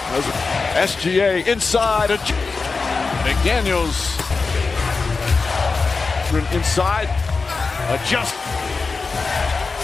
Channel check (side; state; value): right; quieter; 4.3 dB